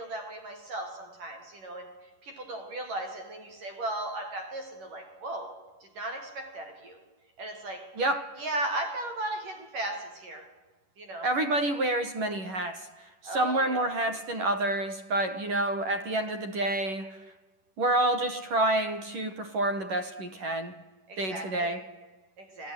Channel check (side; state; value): left; late; 11 ms